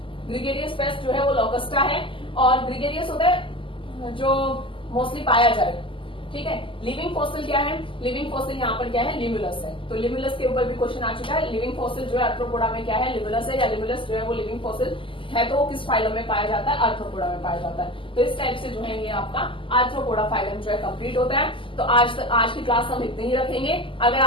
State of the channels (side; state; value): right; late; 0.25 ms